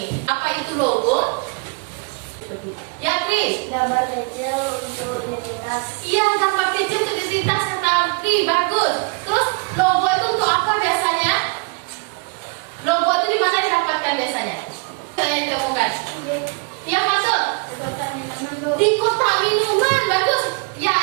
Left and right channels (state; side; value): quieter; left; 31.4 dB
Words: Apa itu logo? Ya, Kris. Gambar kecil untuk identitas. Iya, gambar kecil untuk identitas kata Kris, bagus. Terus logo itu untuk apa biasanya? Logo itu di mana didapatkan biasanya? Saya temukan. Ya, masuk. Di kotak minuman, bagus. Ya,